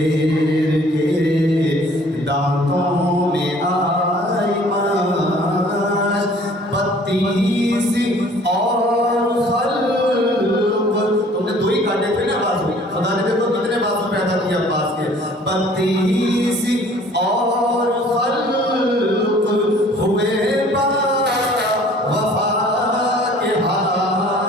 کے دانتوں میں آئی ماش، 32 اور خلق، تم نے 2 ہی کاٹے تھے نا بازو، خدا نے دیکھو کتنے بازو پیدا کیا عباس کے، 32 اور خلق ہوئے با وفا کے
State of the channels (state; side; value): normal; both; correlation 0.53